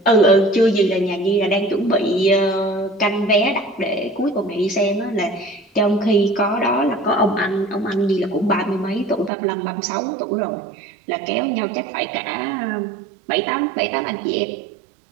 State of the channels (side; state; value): left; drops out; at 9.3 s